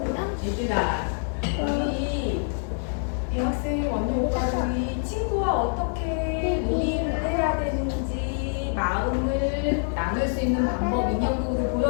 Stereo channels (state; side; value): silent; right; digital silence